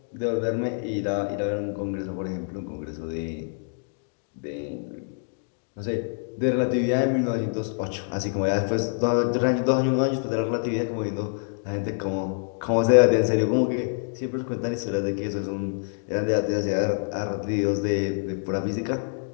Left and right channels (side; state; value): right; silent; digital silence